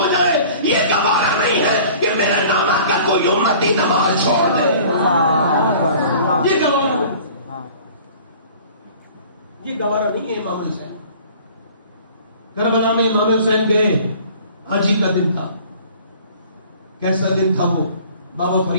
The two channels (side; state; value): both; inverted; correlation -0.48